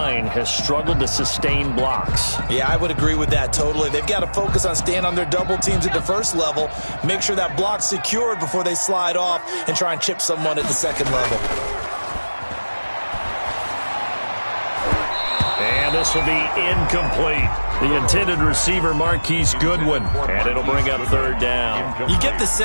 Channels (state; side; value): inverted; both; correlation -1.00